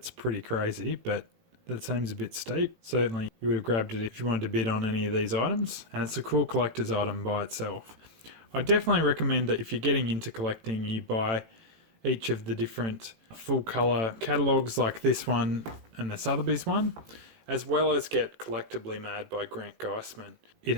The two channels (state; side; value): late; left; 18 ms